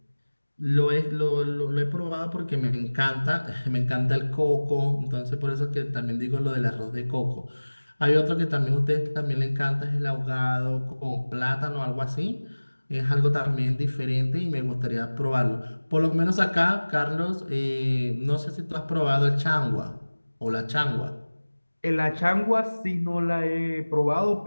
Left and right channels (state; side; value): inverted; both; correlation -1.00